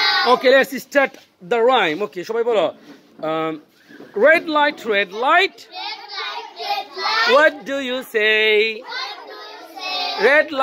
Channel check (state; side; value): identical; both; correlation 1.00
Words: Okay, let's start the rhyme. Okay, সবাই বলো red light, red light. What do you say? Red